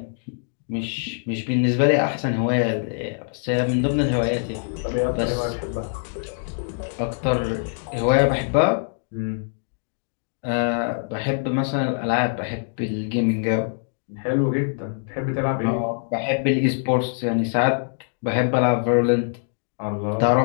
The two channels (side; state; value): right; silent; digital silence